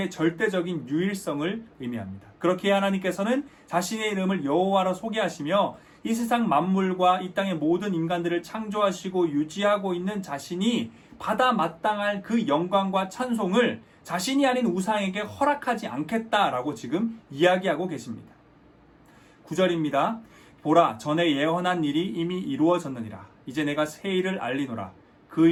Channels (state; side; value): identical; both; correlation 1.00